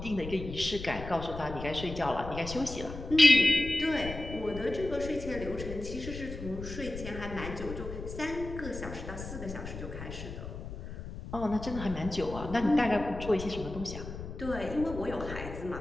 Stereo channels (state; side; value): noise; left; rumble, 9 dB below the sound